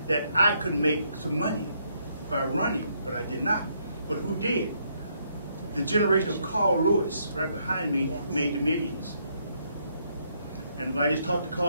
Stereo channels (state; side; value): inverted; both; correlation -0.73